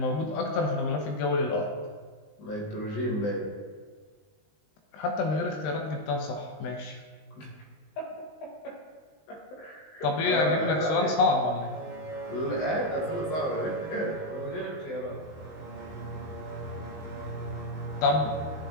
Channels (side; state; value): right; late; 19 ms